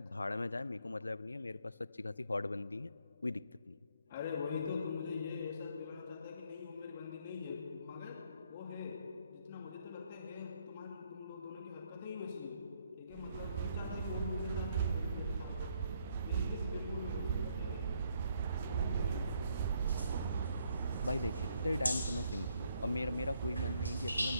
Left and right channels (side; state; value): both; inverted; correlation -0.71